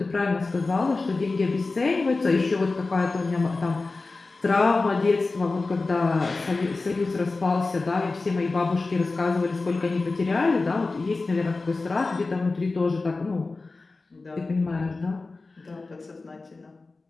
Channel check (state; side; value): quieter; right; 3.6 dB